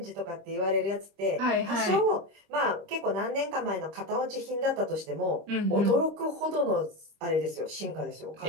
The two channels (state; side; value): late; left; 25 ms